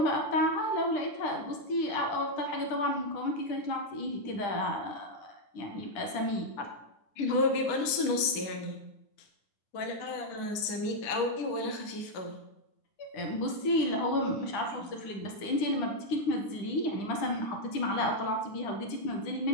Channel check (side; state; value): right; late; 10 ms